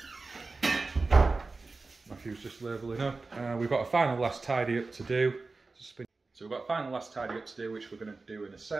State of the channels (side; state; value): left; quieter; 3.8 dB